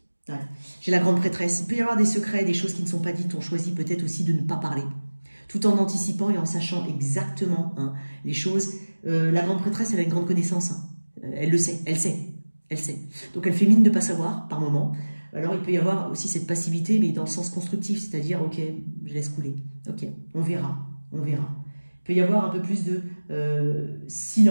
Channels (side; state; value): both; inverted; correlation -1.00